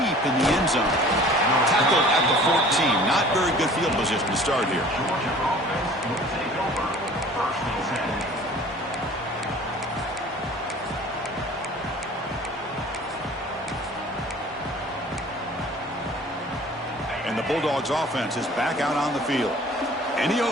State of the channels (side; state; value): both; normal; correlation 0.47